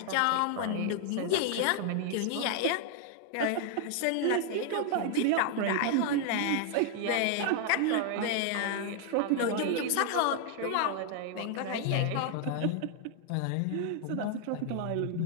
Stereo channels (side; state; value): both; different; correlation 0.00